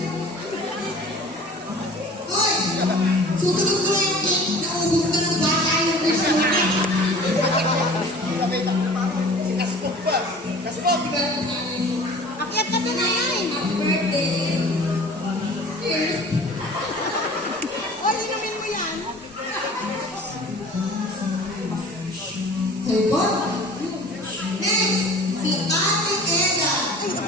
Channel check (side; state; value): both; normal; correlation 0.44